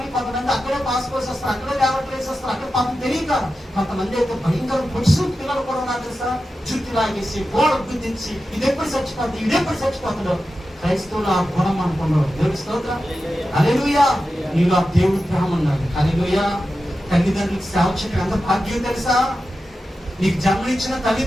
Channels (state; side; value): normal; both; correlation 0.92